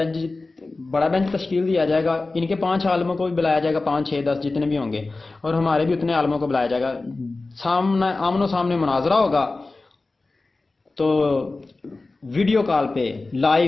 بینچ تشکیل دیا جائے گا. ان کے 5 عالموں کو بھی بلایا جائے گا، 5 6 10 جتنے بھی ہوں گے، اور ہمارے بھی اتنے عالموں کو بلایا جائے گا. آمن و سامنے مناظرہ ہوگا. تو ویڈیو کال پہ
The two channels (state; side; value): quieter; right; 3.4 dB